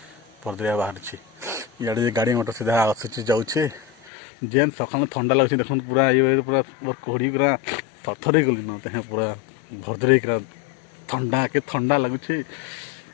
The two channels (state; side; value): drops out; right; at 4.1 s